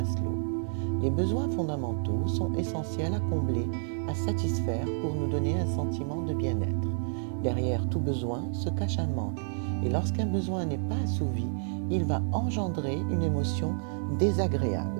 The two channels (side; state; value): left; silent; digital silence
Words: Les besoins fondamentaux sont essentiels à combler, à satisfaire pour nous donner un sentiment de bien-être. Derrière tout besoin se cache un manque et lorsqu'un besoin n'est pas assouvi, il va engendrer une émotion